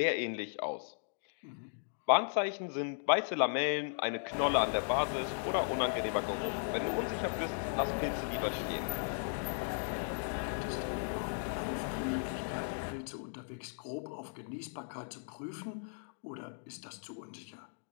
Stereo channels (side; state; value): right; silent; digital silence